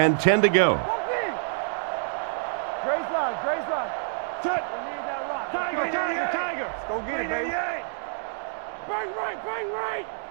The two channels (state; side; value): silent; left; digital silence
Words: 10 to go. Grace line. Touch. We need that rock. Tiger. Go get it, baby. Bang right.